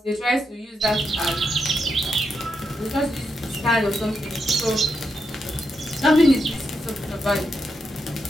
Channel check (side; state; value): both; normal; correlation 0.84